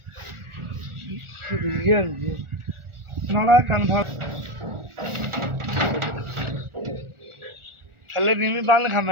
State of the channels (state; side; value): late; left; 1.4 ms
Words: थले नीवी बंद खा